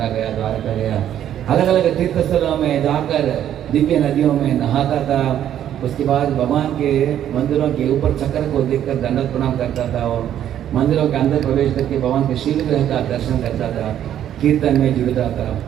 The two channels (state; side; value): quieter; left; 10.7 dB